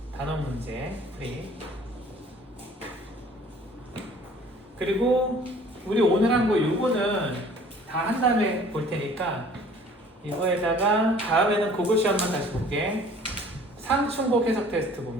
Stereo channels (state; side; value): normal; both; correlation 0.52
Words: 단원 문제 프리. 그리고 우리 오늘 한 거 요거는 다 한 다음에 볼 테니까 이거에다가 다음에는 그거 시험만 다시 볼게. 상충곡 해석 테스트